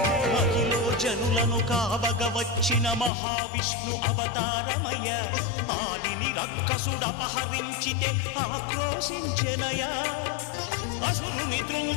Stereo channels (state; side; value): drops out; right; at 3.1 s